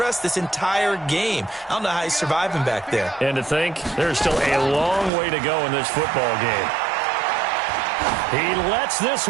this entire game. I don't know how he's surviving back there. And to think, there's still a long way to go in this football game. He lets this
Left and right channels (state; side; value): drops out; left; at 5.1 s